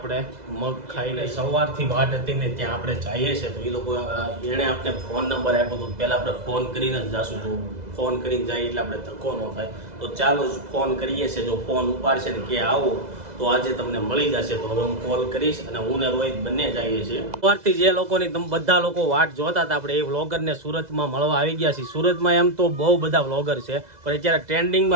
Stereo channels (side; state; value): left; late; 2.0 ms